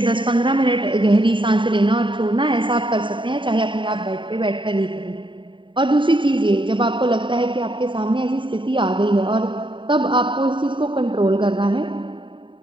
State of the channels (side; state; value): left; late; 0.24 ms